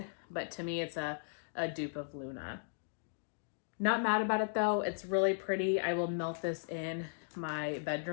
but to me, it's a dupe of Luna. Not mad about it though. It's really pretty. I will melt this in my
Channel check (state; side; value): silent; right; digital silence